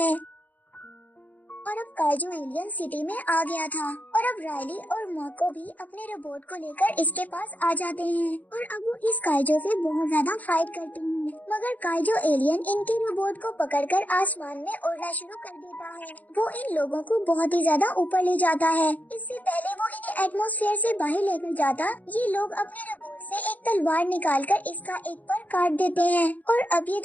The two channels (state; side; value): late; right; 0.079 ms